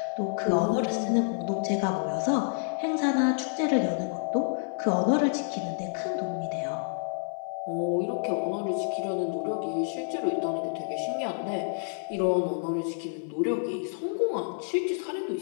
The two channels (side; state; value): right; silent; 59 dB below the other